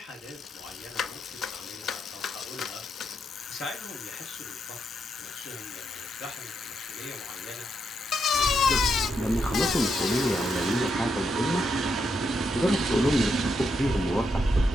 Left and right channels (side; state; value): both; normal; correlation 0.81